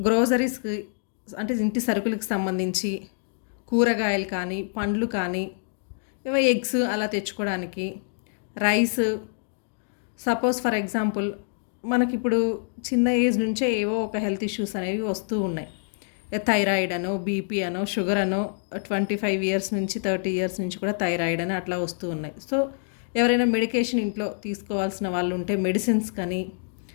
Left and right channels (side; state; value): right; silent; digital silence